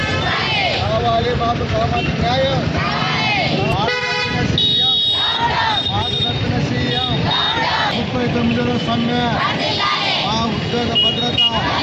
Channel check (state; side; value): identical; both; correlation 1.00